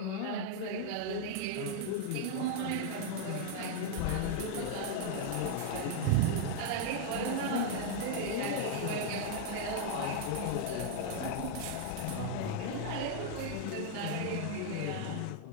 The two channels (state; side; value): different; both; correlation 0.00